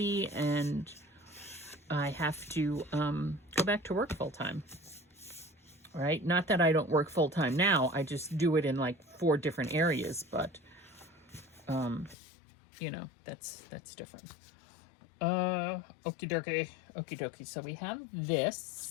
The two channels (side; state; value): right; drops out; at 12.2 s